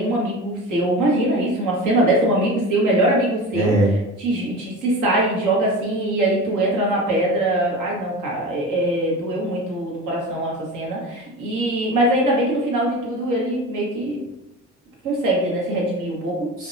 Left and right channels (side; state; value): both; normal; correlation 0.30